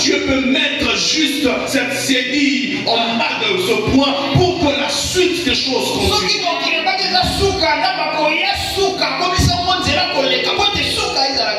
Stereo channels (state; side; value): identical; both; correlation 1.00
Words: peut mettre juste cette cédille en bas de ce point pour que la suite des choses continue.